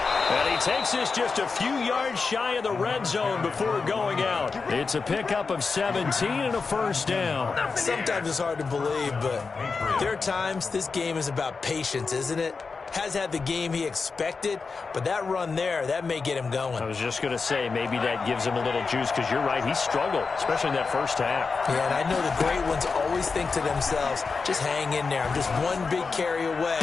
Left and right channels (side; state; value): right; quieter; 4.7 dB